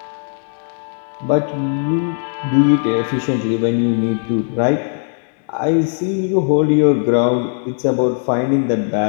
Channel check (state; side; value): silent; right; digital silence